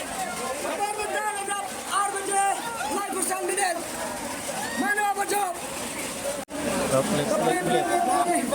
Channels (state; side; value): identical; both; correlation 1.00